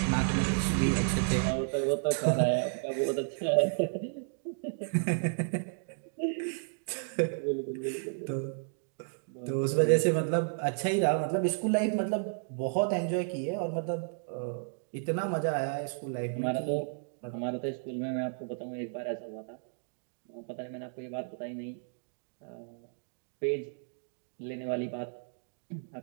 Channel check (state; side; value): silent; left; digital silence